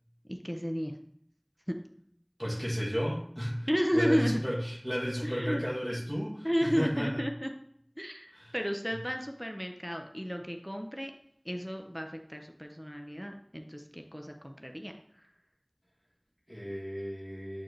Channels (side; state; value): both; identical; correlation 1.00